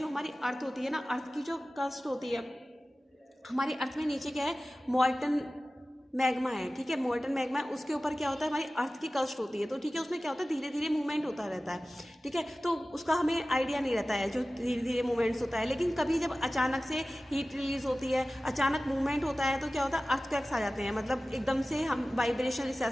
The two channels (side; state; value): both; normal; correlation 0.96